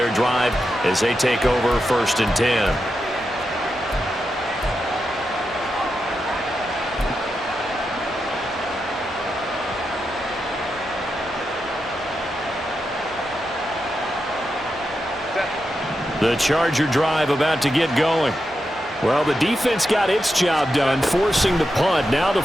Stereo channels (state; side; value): normal; both; correlation 0.87